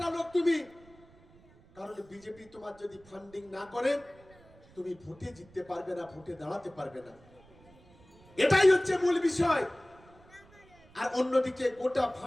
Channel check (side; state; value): right; noise; rumble, 26 dB below the sound